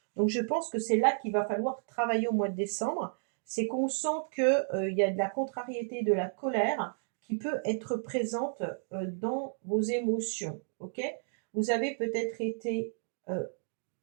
Donc je pense que c'est là qu'il va falloir travailler au mois de décembre. C'est qu'on sent que, il y a de la contrariété, de la colère qui peut être présente, dans vos émotions, OK? Vous avez peut-être été,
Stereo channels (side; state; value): left; silent; digital silence